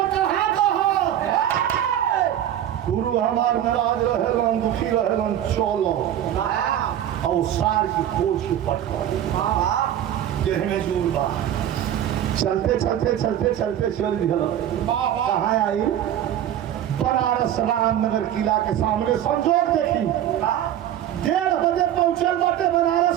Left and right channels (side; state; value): left; quieter; 11.1 dB